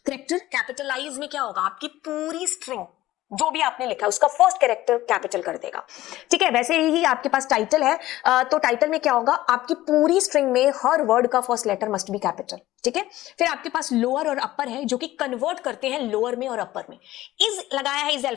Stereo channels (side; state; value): right; quieter; 15.8 dB